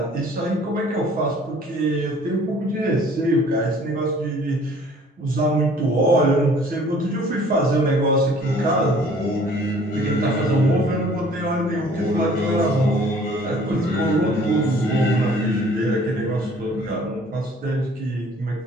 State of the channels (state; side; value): normal; both; correlation 0.54